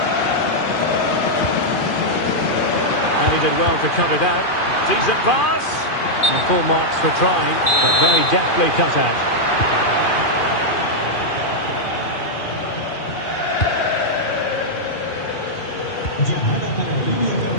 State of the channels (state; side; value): late; right; 2.4 ms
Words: And he did well to cut it out. Decent pass. And full marks for trying, but very deftly cut out.